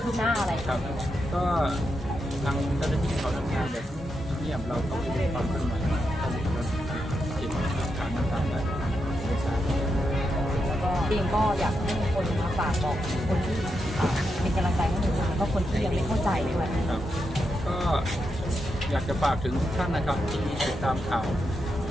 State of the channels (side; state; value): both; normal; correlation 0.85